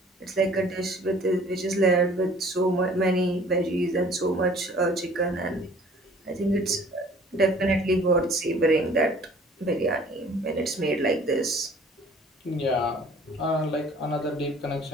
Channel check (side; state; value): both; normal; correlation 0.52